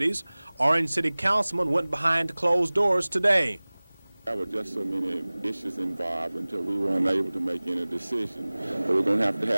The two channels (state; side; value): inverted; both; correlation -1.00